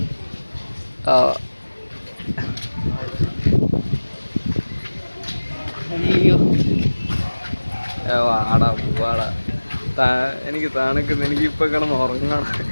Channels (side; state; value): both; inverted; correlation -1.00